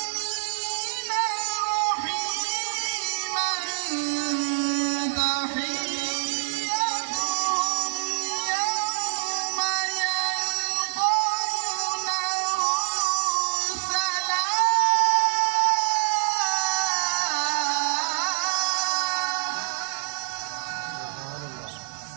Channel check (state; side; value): silent; left; digital silence